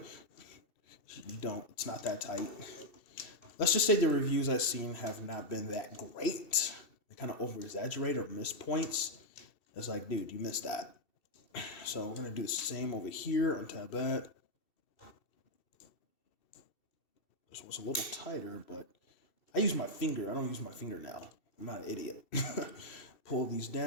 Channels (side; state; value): right; late; 2.7 ms